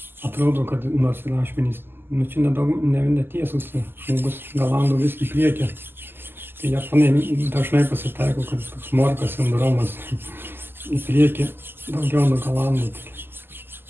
atrodo, kad nors ir ašmenys, čia netiesus, žmogus galando vis į priekį. Tai japonai dažnai pasitaiko, kad toks morkos sindromas į priekį daugiau nugalando.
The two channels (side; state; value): left; late; 0.10 ms